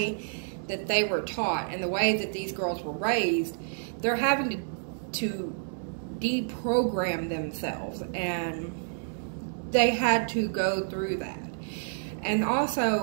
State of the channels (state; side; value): silent; left; digital silence